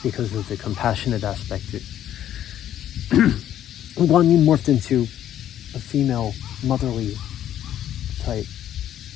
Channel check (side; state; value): right; quieter; 11.2 dB